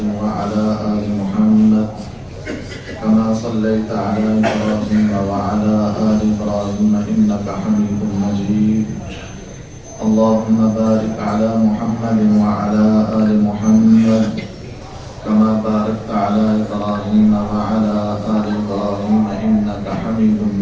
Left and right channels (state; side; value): identical; both; correlation 1.00